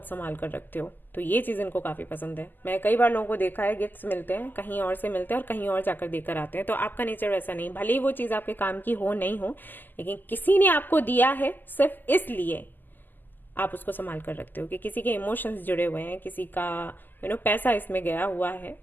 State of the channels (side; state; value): right; late; 0.088 ms